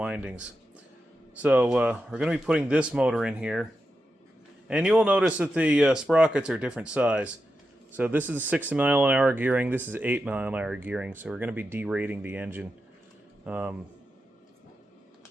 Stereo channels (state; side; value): normal; both; correlation 0.88